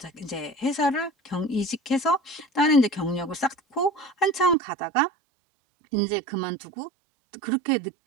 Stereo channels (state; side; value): drops out; left; at 4.5 s